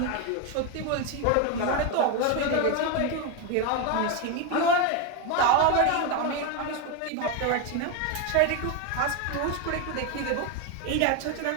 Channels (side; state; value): both; different; correlation 0.02